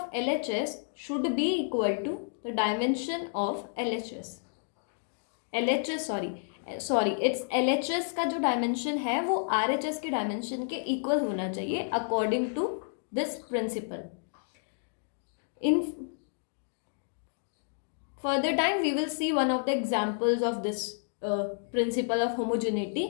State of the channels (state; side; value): silent; right; digital silence